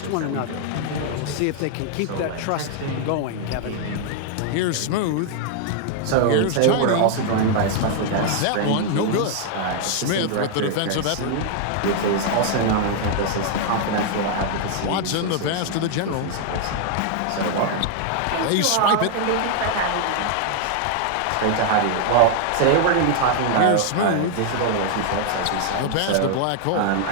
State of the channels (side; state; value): both; different; correlation 0.00